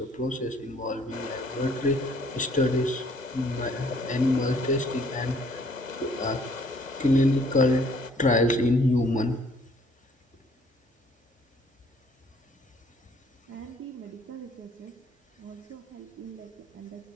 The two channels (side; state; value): both; normal; correlation 0.61